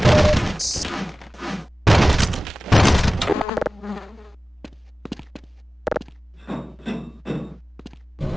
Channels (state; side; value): normal; both; correlation 0.98